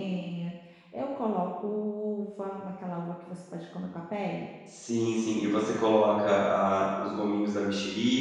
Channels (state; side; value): identical; both; correlation 1.00